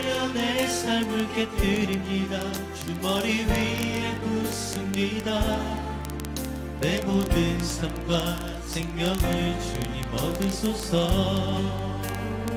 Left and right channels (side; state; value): both; identical; correlation 1.00